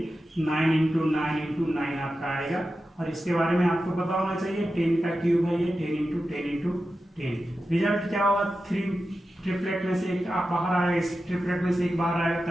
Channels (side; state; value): both; normal; correlation 0.92